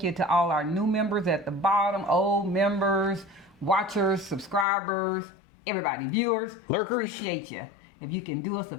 you to all our new members at the bottom, old members, watchers, subscribers, everybody, viewers. Lurkers. Appreciate you. If you can do us a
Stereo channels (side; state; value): right; drops out; at 4.7 s